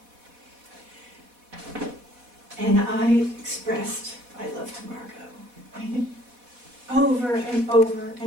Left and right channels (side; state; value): left; late; 4.1 ms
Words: And I expressed my love to Margo over and over